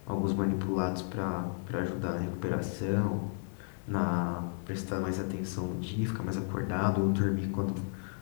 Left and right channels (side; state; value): right; silent; digital silence